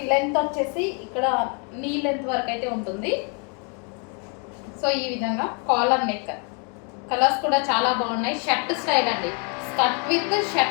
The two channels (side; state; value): right; quieter; 36.6 dB